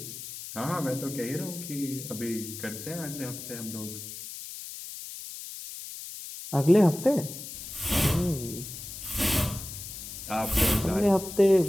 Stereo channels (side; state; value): left; noise; hiss, 10 dB below the sound